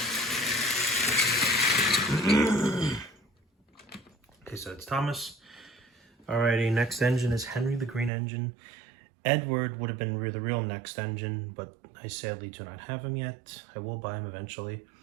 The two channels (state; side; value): drops out; left; at 8.1 s